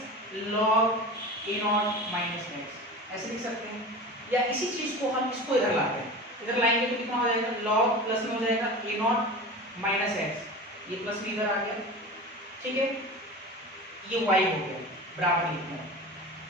log A0 minus x ऐसे लिख सकते हैं। या इसी चीज को हम इसको इधर लाते हैं, इधर लाएंगे तो कितना हो जाएगा, log प्लस में हो जाएगा A0 माइनस x, ये प्लस में इधर आ गया, ठीक है, ये y हो गया बराबर लिखना है,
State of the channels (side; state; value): both; normal; correlation 0.32